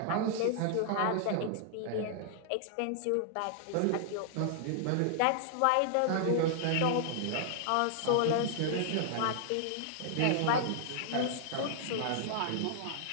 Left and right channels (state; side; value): different; both; correlation -0.01